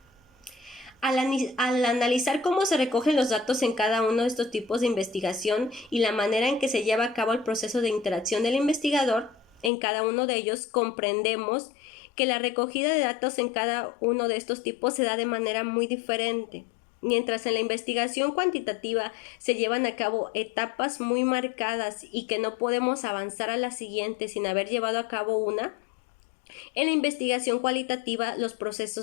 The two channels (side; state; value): right; drops out; at 9.7 s